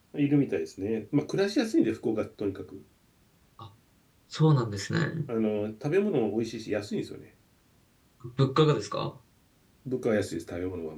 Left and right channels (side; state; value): both; identical; correlation 1.00